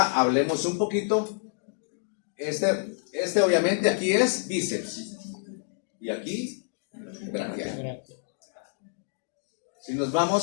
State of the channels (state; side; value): silent; right; digital silence